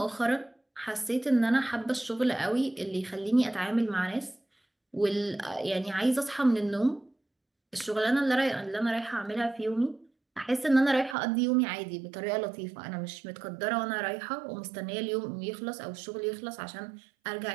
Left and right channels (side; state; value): left; drops out; at 11.2 s